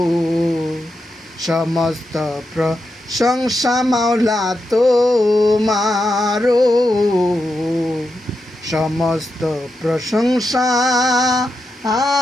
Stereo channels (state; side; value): normal; both; correlation 0.87